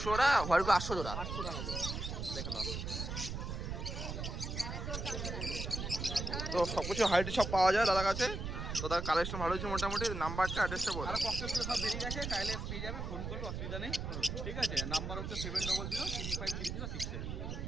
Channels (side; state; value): right; noise; rumble, 4 dB below the sound